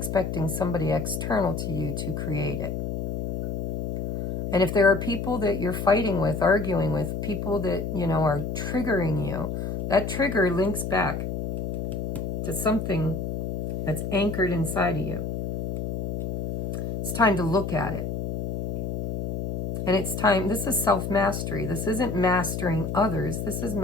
somebody external to you to create it. And if there are people that you're fighting with, arguing with, people that, are triggering you, that trigger links back to something that's anchored inside of you. It's time to look at it. And it's time, this is self-mastery. This isn't mastering others. This is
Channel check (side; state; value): left; noise; hum, 2 dB below the sound